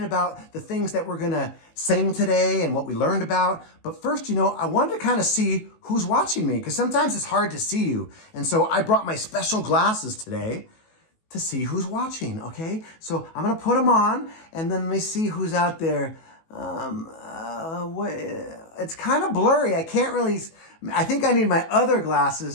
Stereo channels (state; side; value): late; right; 18 ms